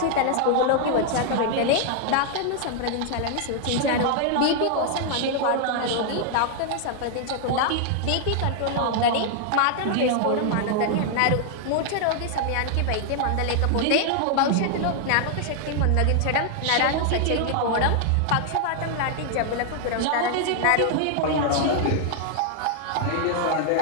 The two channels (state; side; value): different; both; correlation 0.00